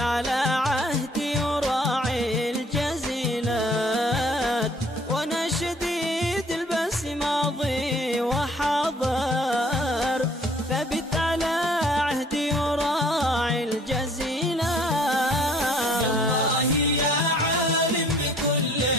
عهدي وراعي الجزيلات، وانا شديد البأس ماضي وحاضر، ثبت على عهدي وراعي الجزيلات. الله يا عالم بكل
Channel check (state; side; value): normal; both; correlation 0.57